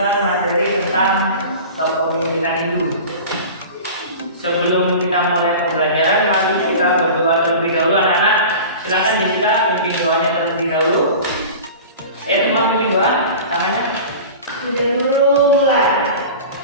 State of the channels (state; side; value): inverted; both; correlation -0.36